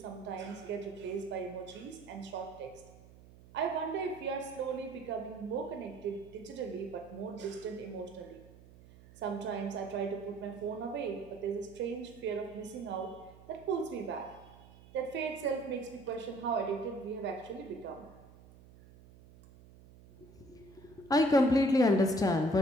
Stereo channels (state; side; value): noise; right; hum, 21 dB below the sound